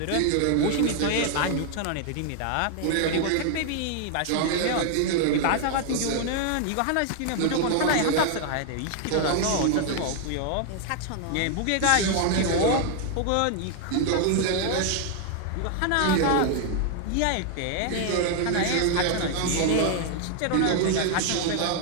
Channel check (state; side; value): different; both; correlation 0.00